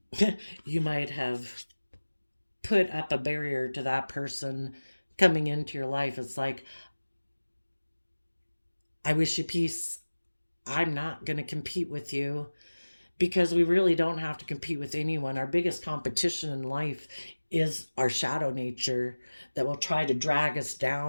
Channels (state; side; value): inverted; both; correlation -1.00